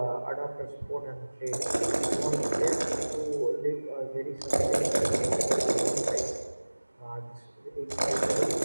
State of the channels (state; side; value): inverted; both; correlation -1.00